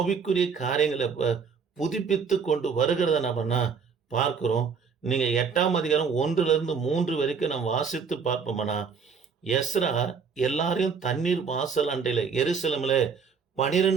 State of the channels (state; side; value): quieter; left; 5.8 dB